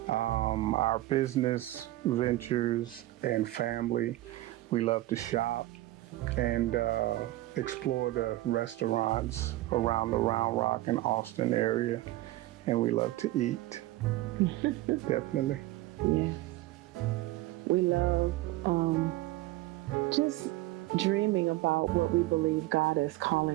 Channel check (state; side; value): quieter; left; 17.1 dB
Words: our business ventures and family. We love to shop and explore the restaurants around the Round Rock and Austin area. And we love to eat, definitely. Yes. We love just dreaming about what we believe God is